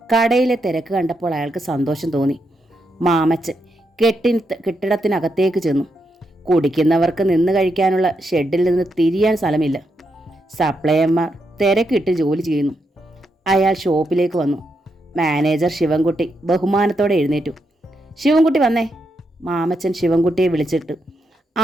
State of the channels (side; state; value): both; normal; correlation 0.82